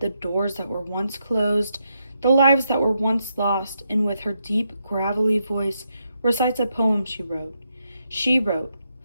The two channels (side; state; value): both; inverted; correlation -0.81